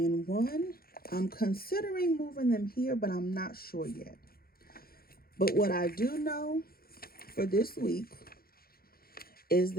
I'm considering moving them here, but I'm not sure yet. But what I do know for this week is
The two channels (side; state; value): right; late; 0.44 ms